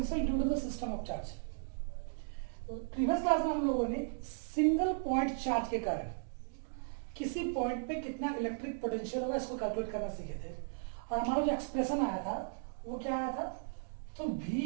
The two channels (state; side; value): silent; left; digital silence